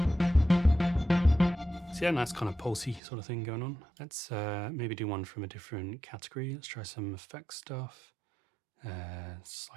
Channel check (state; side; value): drops out; left; at 3.0 s